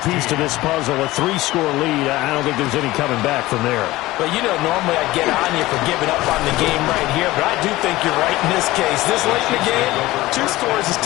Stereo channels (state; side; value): quieter; right; 18.1 dB